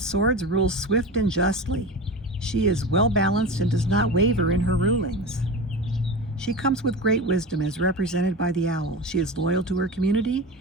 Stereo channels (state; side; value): normal; both; correlation 0.27